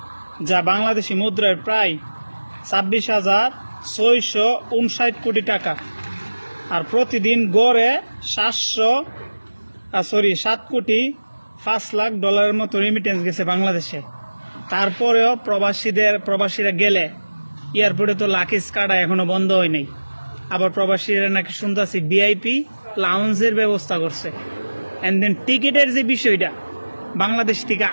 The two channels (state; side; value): inverted; both; correlation -1.00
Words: যা বাংলাদেশি মুদ্রায় প্রায় 26,659 কোটি টাকা। আর প্রতিদিন গড়ে 7,05,00,000 ডলারের মতো রেমিটেন্স গেছে বাংলাদেশে। তারপরেও প্রবাসীরা গেলে এয়ারপোর্টে তো লাকিস কাটা এখনো বন্ধ হয় নাই। আবার প্রবাসীরা নাকি শুনতেছি ভিআইপি লাউঞ্জের ব্যবস্থা করছে। অ্যান্ড দেন টিকিটের যে বিষয়টা, বাংলাদেশ থেকে